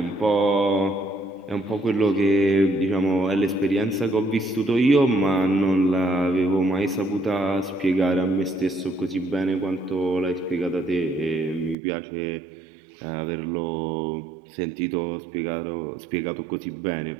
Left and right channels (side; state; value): left; drops out; at 11.8 s